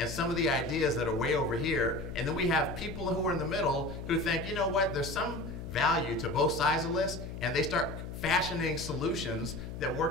some of the ideas that are way over here, and then we have people who are in the middle who think, you know what, there's some value to both sides of this, and they start fashioning solutions that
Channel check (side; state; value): left; noise; hum, 9 dB below the sound